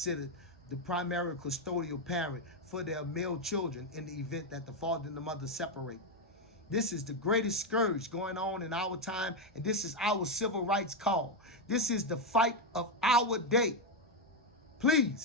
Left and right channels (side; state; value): both; normal; correlation 0.04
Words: the primary custodial parent for their male children in the event that the father and the mother separate. This is the greatest scourge going on in our time, and this is our civil rights call. This is the fight of our day.